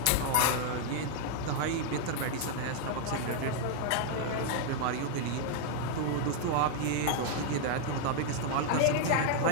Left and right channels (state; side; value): different; both; correlation 0.00